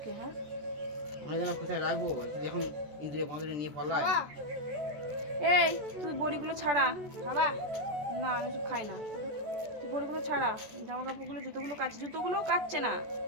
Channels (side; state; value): left; late; 14 ms